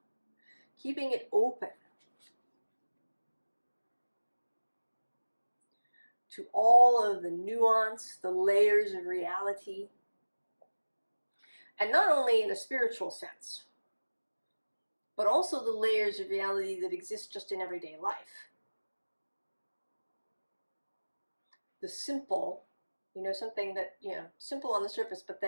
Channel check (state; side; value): inverted; both; correlation -1.00